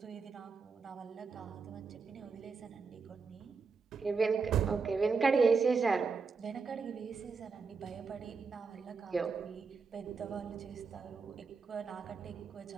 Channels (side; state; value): left; quieter; 4.9 dB